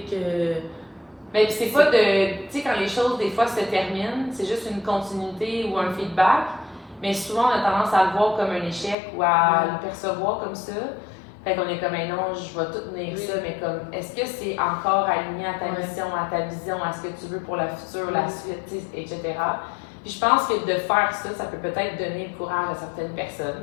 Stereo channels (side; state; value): right; drops out; at 9.0 s